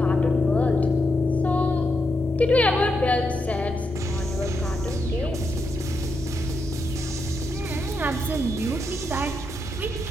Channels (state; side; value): noise; left; rumble, 16 dB below the sound